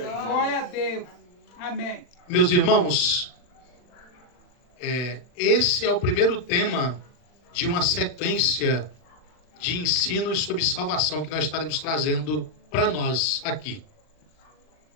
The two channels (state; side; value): late; right; 40 ms